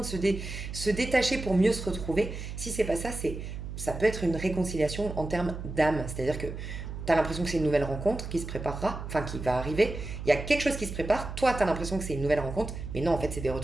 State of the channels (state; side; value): noise; right; hum, 8 dB below the sound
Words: se détacher pour mieux se retrouver, si c'est pas ça, ça peut être une réconciliation en termes d'âme. C'est-à-dire que tu as l'impression que c'est une nouvelle rencontre qui se préparera, enfin qui va arriver. Il y a quelque chose qui se prépare. Toi, tu as l'impression que c'est une nouvelle rencontre, mais non, en fait, c'est des